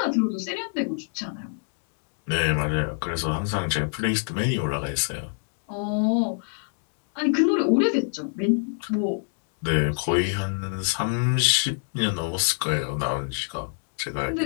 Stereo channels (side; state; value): right; silent; 61 dB below the other